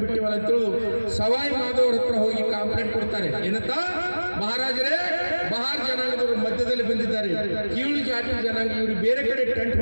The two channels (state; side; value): inverted; both; correlation -1.00